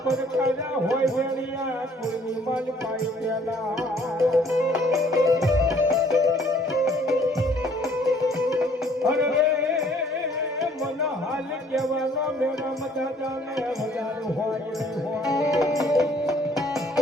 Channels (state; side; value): normal; both; correlation 0.59